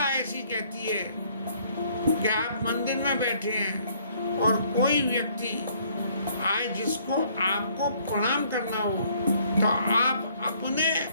ऐसी कहती है कि आप मंदिर में बैठे हैं और कोई व्यक्ति आए जिसको आपको प्रणाम करना हो तो आप अपने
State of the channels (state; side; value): inverted; both; correlation -0.63